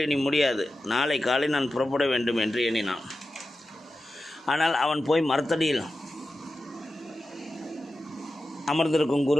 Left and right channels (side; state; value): both; normal; correlation 0.92